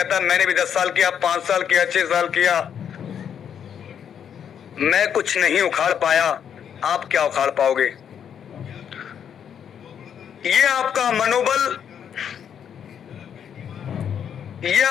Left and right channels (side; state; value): right; quieter; 8.4 dB